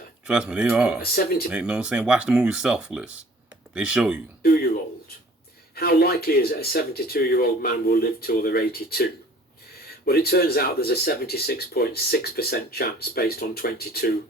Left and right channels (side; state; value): both; normal; correlation 0.51